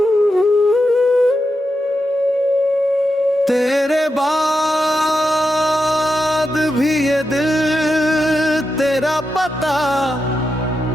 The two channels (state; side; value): normal; both; correlation 0.87